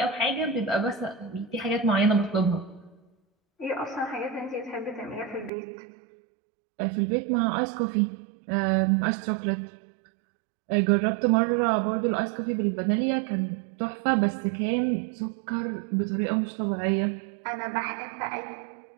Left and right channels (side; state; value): left; drops out; at 5.5 s